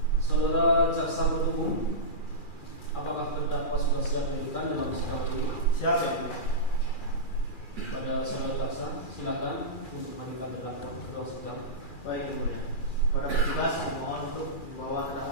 Saudara jaksa penuntut umum, apakah terdakwa sudah siap dihadirkan dalam sidang ini? Siap, ya. Pada saudara jaksa, silakan untuk menghadirkan terdakwa ke ruang sidang. Baik, Yang Mulia. Para petugas mohon untuk membawa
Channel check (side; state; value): right; late; 2.4 ms